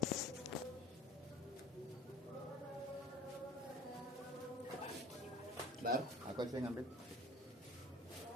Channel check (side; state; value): both; normal; correlation 0.43